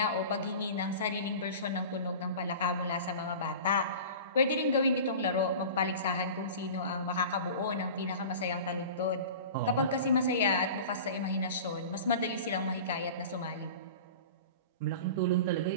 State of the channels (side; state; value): both; inverted; correlation -0.36